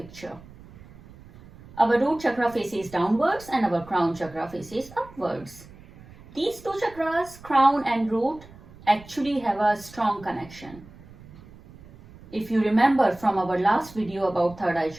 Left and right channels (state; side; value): noise; right; rumble, 21 dB below the sound